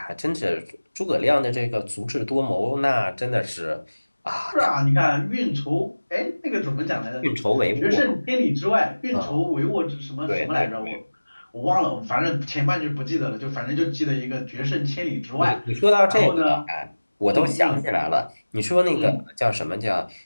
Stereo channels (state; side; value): inverted; both; correlation -1.00